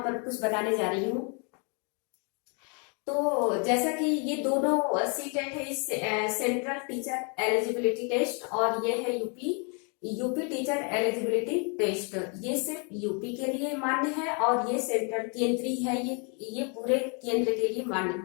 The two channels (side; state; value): right; quieter; 36.1 dB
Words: पर कुछ बताने जा रही हूँ। तो जैसा कि ये दोनों सी टेट है, इस सेंट्रल टीचर एलिजिबिलिटी टेस्ट, और ये है यूपी टीचर एलिजिबिलिटी टेस्ट। ये सिर्फ यूपी के लिए मान्य है और ये सेंट्रल केंद्रीय है, ये पूरे केंद्र के लिए मान्य